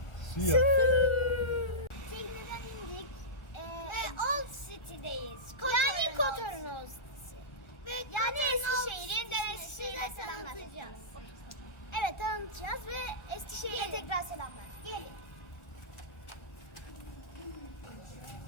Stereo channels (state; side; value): late; right; 1.4 ms